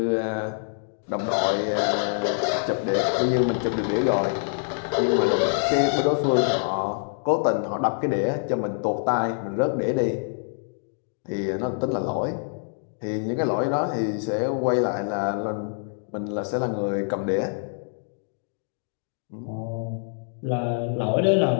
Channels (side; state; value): right; silent; digital silence